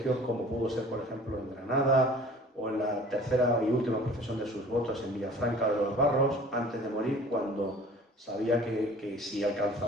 como pudo ser, por ejemplo, en Granada, o en la tercera y última profesión de sus votos en Villafranca de los Barros, antes de morir, cuando sabía que si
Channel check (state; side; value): normal; both; correlation 0.47